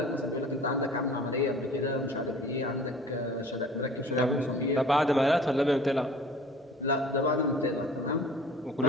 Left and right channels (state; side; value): normal; both; correlation 0.48